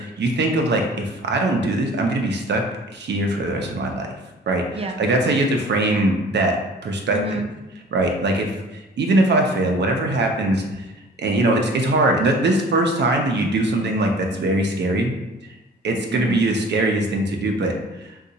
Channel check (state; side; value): normal; both; correlation 0.47